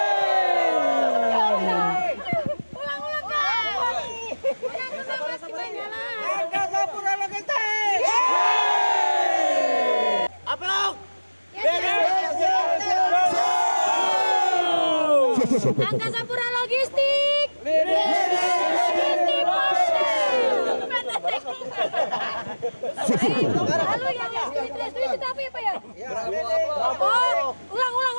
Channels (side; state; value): both; inverted; correlation -1.00